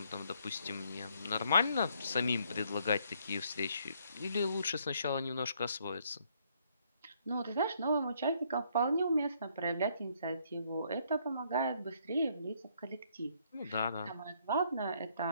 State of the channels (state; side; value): inverted; both; correlation -0.69